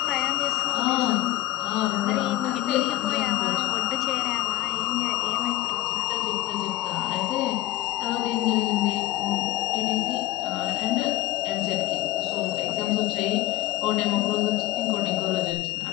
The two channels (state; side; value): quieter; right; 16.4 dB